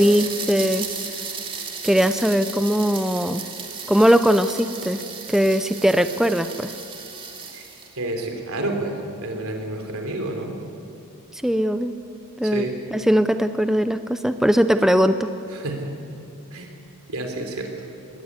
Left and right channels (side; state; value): both; normal; correlation 0.84